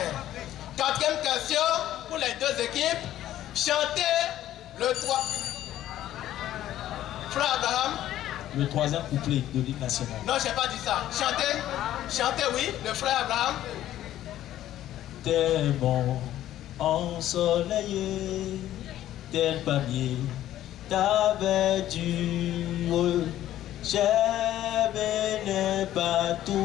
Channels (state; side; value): quieter; right; 13.0 dB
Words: Quatrième question pour les deux équipes. Chantez le 3. Frère Abraham. Le troisième couplet de l'hymne national. Non, je n'ai pas dit ça. Chantez, oui, le frère Abraham. Tel bon ensoleillé, tel palmier t'avais dur. J'aime les